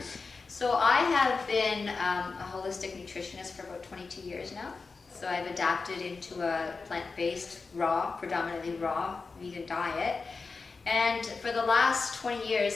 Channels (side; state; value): right; quieter; 4.4 dB